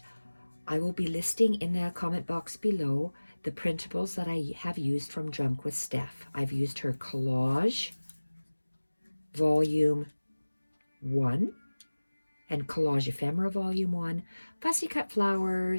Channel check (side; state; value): both; inverted; correlation -1.00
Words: I will be listing in the comment box below the printables that I have used from Junk With Steph. I've used her Collage Volume 1 and Collage Ephemera Volume 1, Fussy